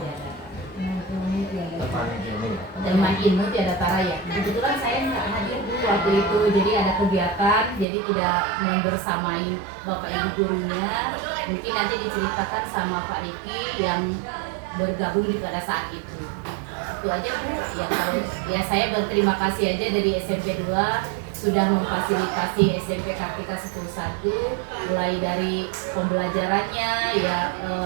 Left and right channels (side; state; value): left; drops out; at 7.9 s